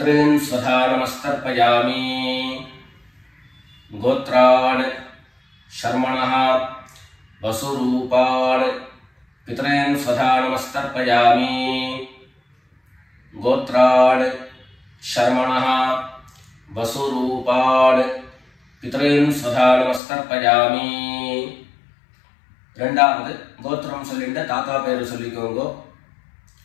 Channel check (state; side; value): drops out; right; at 20.0 s